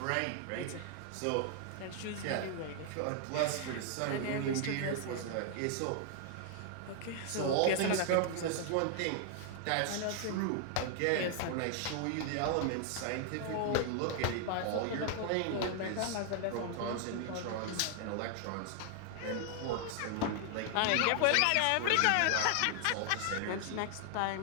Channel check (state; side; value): different; both; correlation 0.00